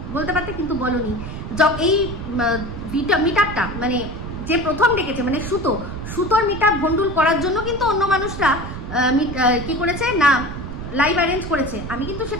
বলতে পারতে, কিন্তু বলনি। এই মিট আপটা মানে যে প্রথম ডেকেছে মানে সুতোর মিট আপ ভন্ডুল করার জন্য কিন্তু অন্য মানুষরা কি করেছে না, লাইভ অ্যারেঞ্জ করেছে। আমি কিন্তু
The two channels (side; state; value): right; noise; rumble, 8 dB below the sound